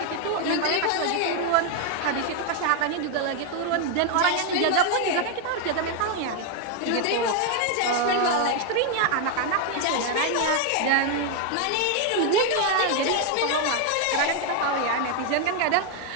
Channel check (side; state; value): both; different; correlation 0.01